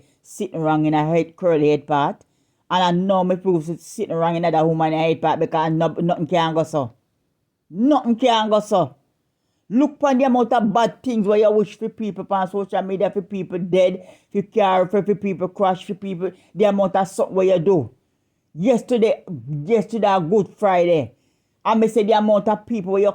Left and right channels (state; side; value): identical; both; correlation 1.00